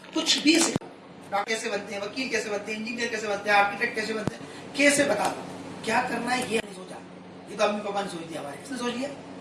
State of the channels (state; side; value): identical; both; correlation 1.00